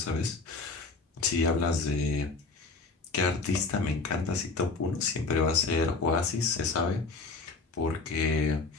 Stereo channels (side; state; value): right; quieter; 3.9 dB